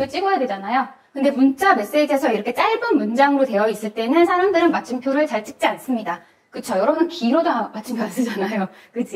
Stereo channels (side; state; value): both; identical; correlation 1.00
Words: 찍어야 되잖아요. 근데 문자 메시지에서 이렇게 짧은 문장으로 되어 있을 때는 사람들은 마침표를 잘 찍지 않습니다. 그쵸? 여러분은 기로도 마침표 안 쓰잖아요.